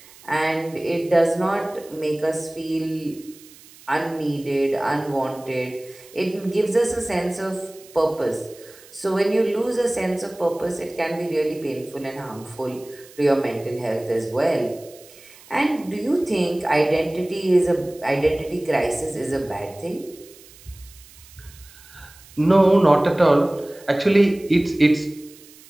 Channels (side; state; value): right; noise; hiss, 23 dB below the sound